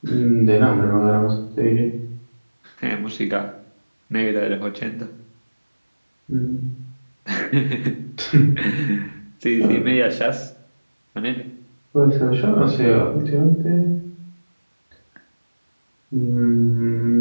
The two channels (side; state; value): both; inverted; correlation -1.00